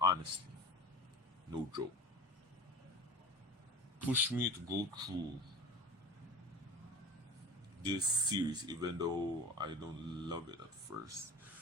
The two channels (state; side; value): normal; both; correlation 0.35